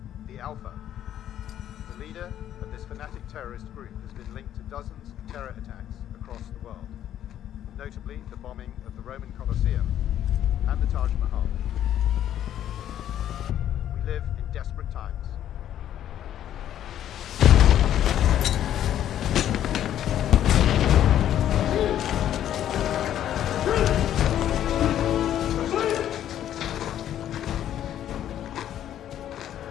the Alpha. The leader of this fanatic terrorist group has been linked to dozens of terror attacks across the world, notably the bombing of the Roman Colosseum and the Taj Mahal. We live in desperate times.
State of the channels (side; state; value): right; quieter; 11.0 dB